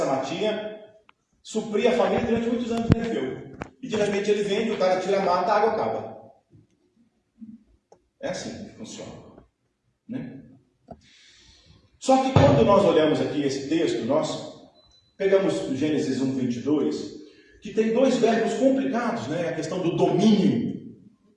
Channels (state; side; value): identical; both; correlation 1.00